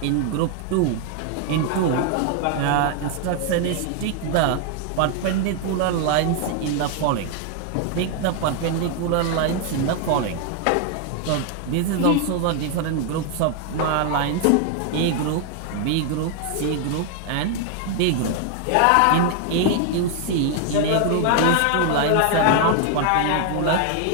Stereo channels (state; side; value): different; both; correlation 0.00